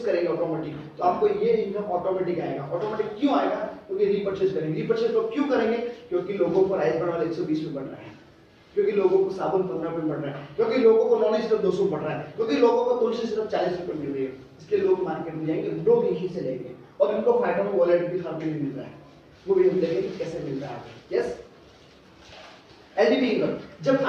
करेंगे ऑटोमेटिक, तो आपको ये इनकम ऑटोमेटिक आएगा। ऑटोमेटिक क्यों आएगा? क्योंकि रीपरचेज करेंगे। रीपरचेज लोग क्यों करेंगे? क्योंकि लोगों को राइस बढ़ 120 में बढ़ रहा है, क्योंकि लोगों को साबुन 15 में बढ़ रहा है, क्योंकि लोगों को नॉन सिर्फ 200 बढ़ रहा है, क्योंकि लोगों को तुलसी सिर्फ 40 रुपए मिल रही है। इसलिए लोग मार्केट में जाएंगे, लोग यहीं से लेंगे और उनको फायदा में वॉलेट भी हर महीने मिल रहा है, वो भी हम देखेंगे कैसे मिल रहा है। Yes, LDP income. जब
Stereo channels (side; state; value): both; identical; correlation 1.00